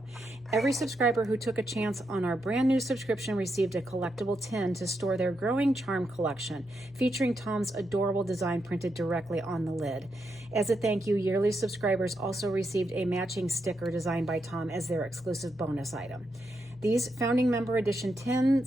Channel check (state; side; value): normal; both; correlation 0.83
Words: Every subscriber who took a chance on our brand new subscription received a collectible tin to store their growing charm collection, featuring Tom's adorable design printed directly on the lid. As a thank you, yearly subscribers also received a matching sticker designed by Tom as their exclusive bonus item. These founding member edition